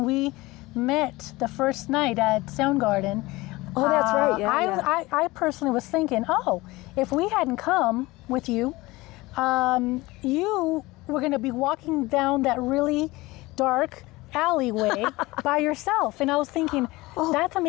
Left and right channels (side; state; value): right; quieter; 20.8 dB